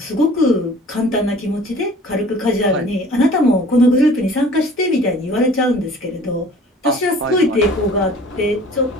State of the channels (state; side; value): normal; both; correlation 0.48